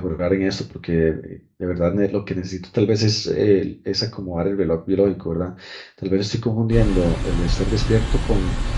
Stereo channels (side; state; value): both; identical; correlation 1.00